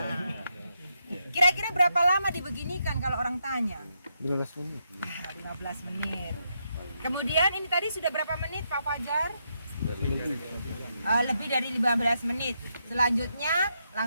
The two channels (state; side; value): inverted; both; correlation -0.81